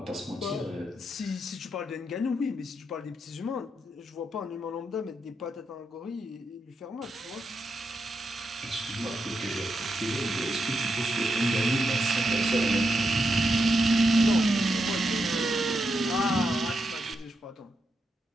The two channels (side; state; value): both; normal; correlation 0.84